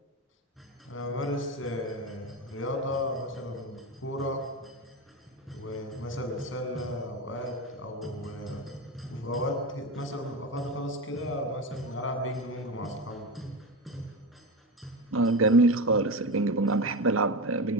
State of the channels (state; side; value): normal; both; correlation 0.20